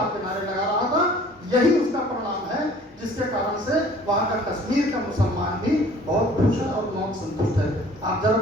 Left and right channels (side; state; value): both; normal; correlation 0.51